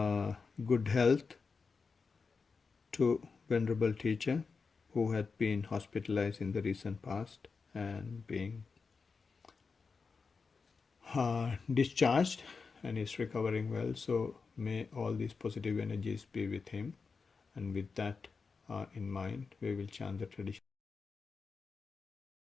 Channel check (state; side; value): quieter; right; 4.9 dB